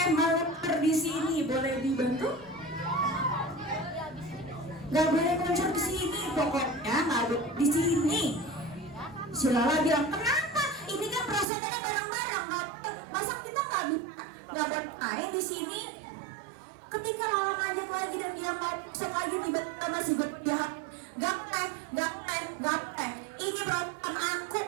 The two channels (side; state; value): left; drops out; at 11.5 s